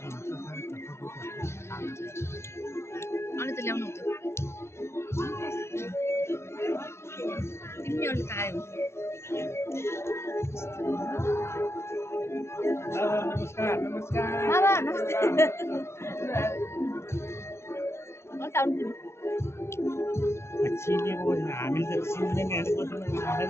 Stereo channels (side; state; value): right; late; 0.13 ms